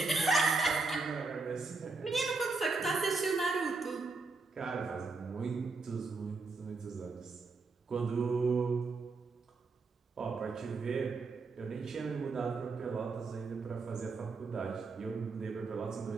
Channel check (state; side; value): quieter; left; 4.0 dB